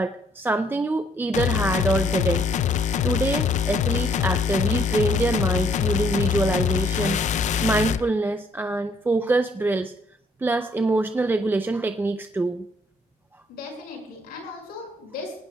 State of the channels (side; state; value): both; normal; correlation 0.66